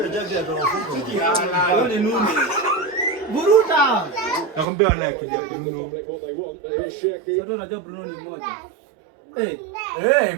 jaji atawafunga. Hiyo ni nuni. Buruta. Nakwambia wana akili ya Bruno. Sasa unajua Bruno ni mmoja.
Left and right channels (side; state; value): left; drops out; at 4.7 s